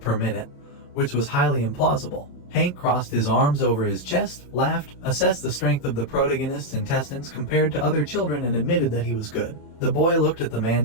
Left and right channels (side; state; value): right; late; 28 ms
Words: minute, which was highly implausible. Hank crossed his arms over his chest, laughed, assessed the strength of the protagonist's intestines compared to other children and admitted that he was good. The boy looked at the